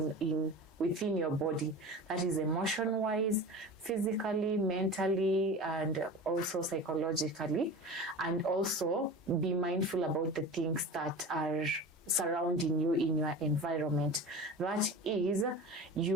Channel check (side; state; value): both; normal; correlation 0.33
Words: within your body. That is emotion-wise, physically, mentally, and also psychologically. And also be mindful about the things that are surrounding you in your environment. That is,